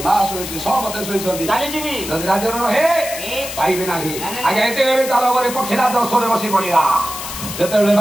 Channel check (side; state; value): left; noise; hiss, 8 dB below the sound